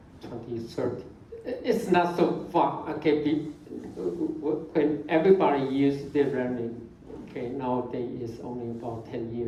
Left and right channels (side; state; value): both; identical; correlation 1.00